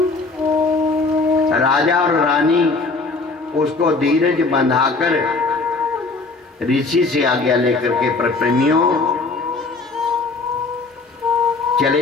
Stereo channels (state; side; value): quieter; right; 3.7 dB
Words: राजा और रानी उसको धीरज बंधाकर ऋषि से आज्ञा लेकर के प्रेमियों